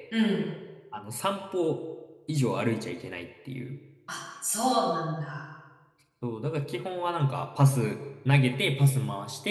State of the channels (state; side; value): identical; both; correlation 1.00